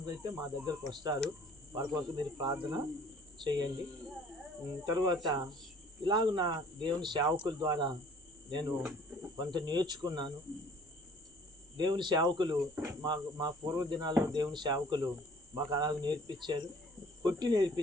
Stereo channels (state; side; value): normal; both; correlation 0.54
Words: అయితే మా దగ్గరకు వస్తారు. వారి కొరకు మీరు ప్రార్థన చేయండి. తరువాత ఇలాగ నా దేవుని సేవకుల ద్వారా నేను కొంత నేర్చుకున్నాను. దేవుని సేవకులు మా పూర్వ దినాల్లో దేవుని సేవకులు మాకు అలాగ నేర్పించారు, కొట్టి